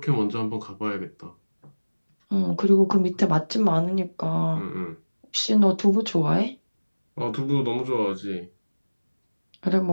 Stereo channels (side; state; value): both; inverted; correlation -1.00